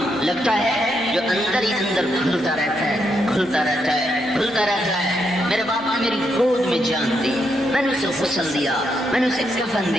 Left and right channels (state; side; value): normal; both; correlation 0.79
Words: لگتا ہے جو اندر ہی اندر کھلتا رہتا ہے، کھلتا رہتا ہے، کھلتا رہتا ہے۔ میرے باپ نے میری گود میں جان دی، میں نے اسے غسل دیا، میں نے اسے کفن